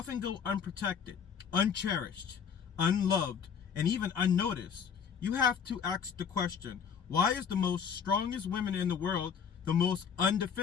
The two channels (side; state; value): right; quieter; 7.0 dB